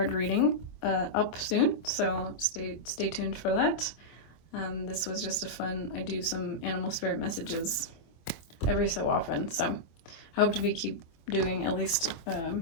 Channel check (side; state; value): right; late; 25 ms